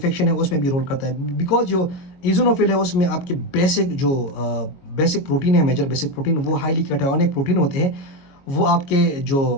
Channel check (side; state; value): right; late; 22 ms